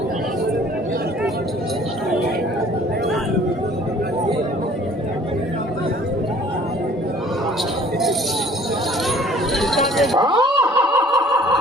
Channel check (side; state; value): both; normal; correlation 0.54